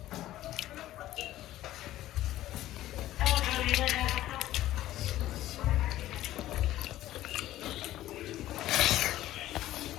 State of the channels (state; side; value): quieter; right; 14.4 dB